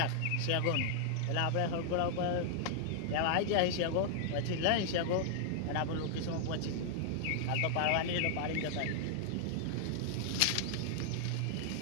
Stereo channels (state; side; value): different; both; correlation 0.00